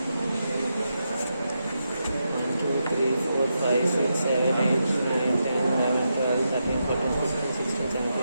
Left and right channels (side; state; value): both; inverted; correlation -0.85